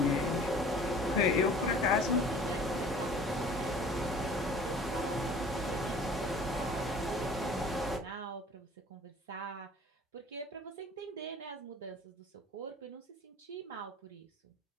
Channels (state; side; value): normal; both; correlation 0.47